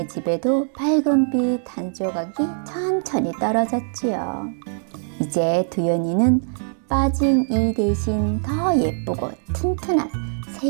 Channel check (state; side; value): silent; left; digital silence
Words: 집에도 밝은 빛 한 조각이 천천히 떨어졌지요. 이제 두연이는 빠진 이 대신 더 예쁘고 튼튼한 새